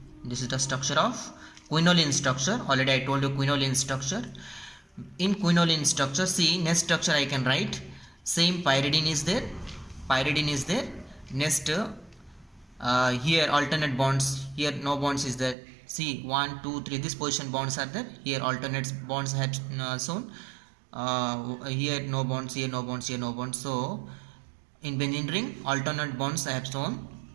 Already I told you quinoline structure. In quinoline structure, see, next structure I can write. Same pyridine is there. Next, here alternate bonds. Here no bonds is there. See, 1 2 3. This position bonds are there. Here alternate bonds have shown. Here no bonds, here no bonds, here no bonds. So in benzene ring alternate bonds I have shown.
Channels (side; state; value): left; drops out; at 15.6 s